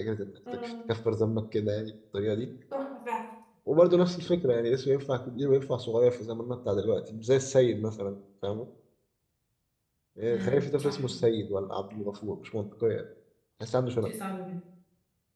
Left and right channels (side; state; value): both; identical; correlation 1.00